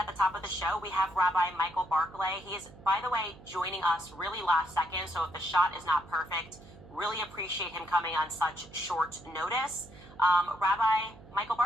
the top of the show, we have Rabbi Michael Barclay. He is, by the way, joining us really last second, so if the shot is not perfect, really appreciate him coming on such short notice. Rabbi Michael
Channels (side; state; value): right; noise; hum, 20 dB below the sound